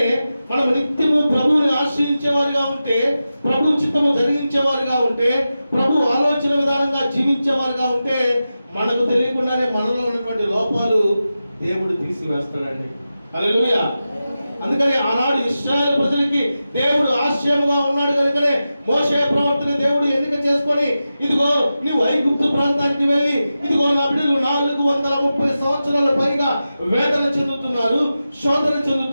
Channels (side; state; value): both; inverted; correlation -0.92